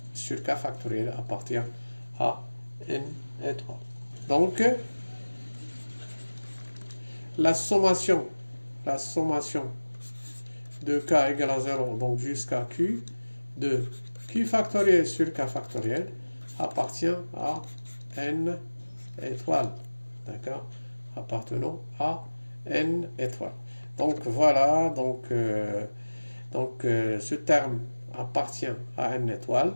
sur K factoriel appartient à N étoile. Donc, la sommation de K égale à 0, donc jusqu'à Q, de Q factoriel sur K factoriel appartient à N étoile. D'accord? Appartenant à N étoile. Donc voilà, donc, ce terme appartient à N étoile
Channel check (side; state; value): both; inverted; correlation -1.00